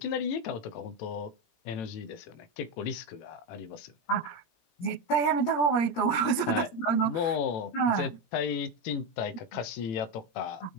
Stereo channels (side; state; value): right; late; 17 ms